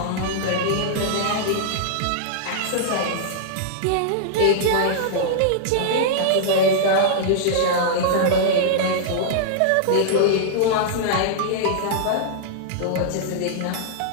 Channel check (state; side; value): different; both; correlation -0.02